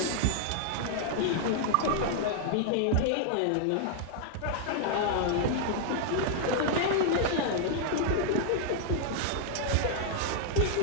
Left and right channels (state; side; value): different; both; correlation -0.01